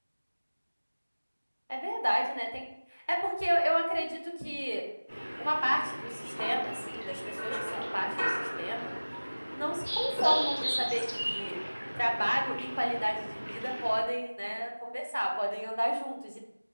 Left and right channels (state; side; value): inverted; both; correlation -1.00